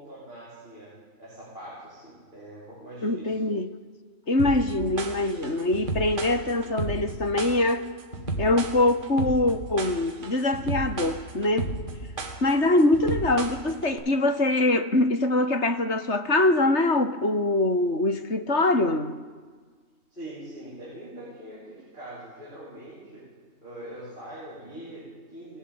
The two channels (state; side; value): late; right; 3.3 ms